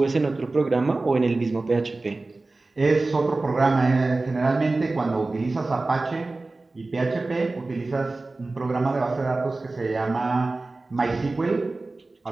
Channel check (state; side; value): quieter; left; 3.3 dB